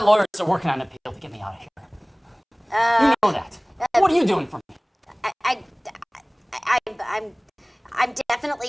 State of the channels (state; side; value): identical; both; correlation 1.00